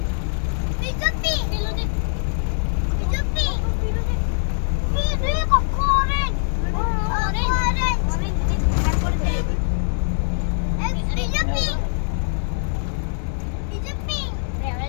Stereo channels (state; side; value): silent; right; digital silence